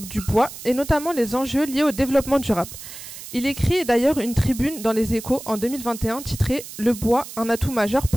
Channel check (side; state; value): right; noise; hiss, 13 dB below the sound